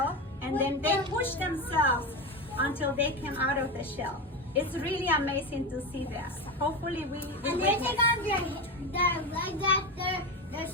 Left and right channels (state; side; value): normal; both; correlation 0.18